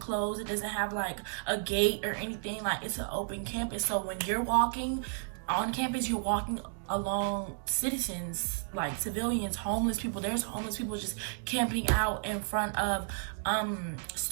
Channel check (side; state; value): left; silent; digital silence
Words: it doesn't have like a gate or anything. Like, it's an open campus. So when you're walking on campus, you're walking along citizens, like civilians, homeless people. There's homeless people just camping out in front of